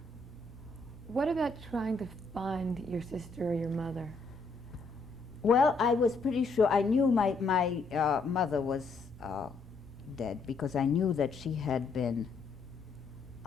What about trying to find your sister or your mother? Well, I was pretty sure. I knew my mother was dead because I knew that she had been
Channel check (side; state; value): right; quieter; 3.9 dB